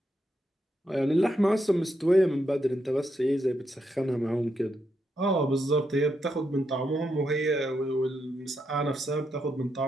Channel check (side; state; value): both; normal; correlation 0.82